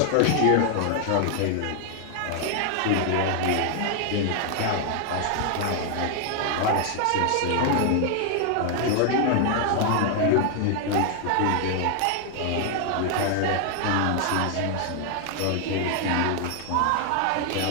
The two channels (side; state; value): both; different; correlation 0.00